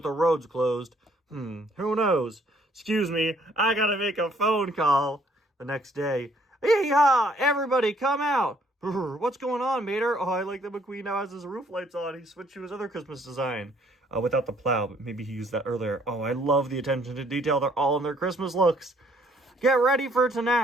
the roads closed. Who knows? Excuse me, I gotta make a phone call. The next day. Yee-haw! Everybody come out! What's going on, Mater? Oh, I like that McQueen now has his roof lights on. He switched to his other Christmas design. Without the plow, but maybe he used that earlier. Oh, I love the attention to detail. They're all in their Christmas looks. Get ready for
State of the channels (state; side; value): normal; both; correlation 0.64